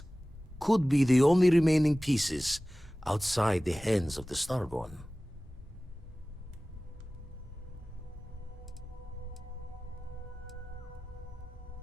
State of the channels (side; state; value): both; normal; correlation 0.98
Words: Could be the only remaining pieces outside the hands of the Starborn.